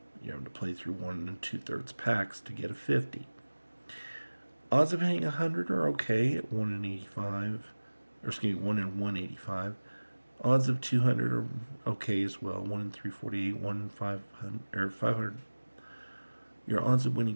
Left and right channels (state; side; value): inverted; both; correlation -1.00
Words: You have to play through 1 2/3 packs to get a 50. Odds of hitting 100 are okay at 1 in 85, or excuse me, 1 in 185. Odds of 200 are okay as well, 1 in 348, 1 in 500, or 500. Your odds of winning